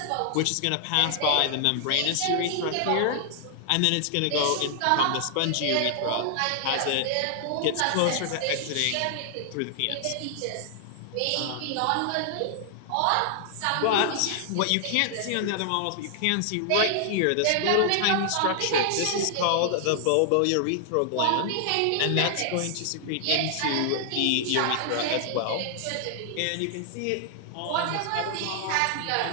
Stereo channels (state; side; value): different; both; correlation 0.00